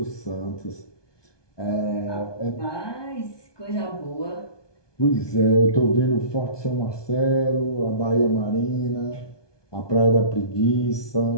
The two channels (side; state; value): right; late; 1.2 ms